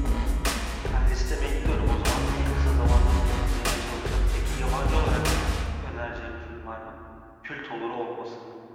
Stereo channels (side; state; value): both; identical; correlation 1.00